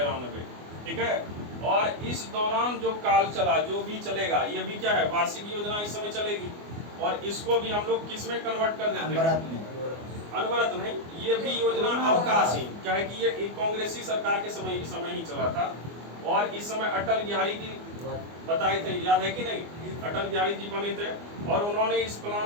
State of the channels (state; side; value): late; left; 24 ms